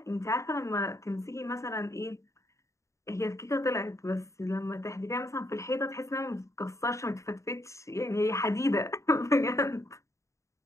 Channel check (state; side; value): late; right; 0.15 ms